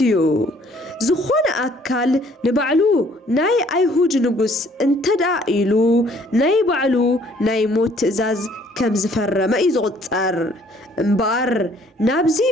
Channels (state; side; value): normal; both; correlation 0.60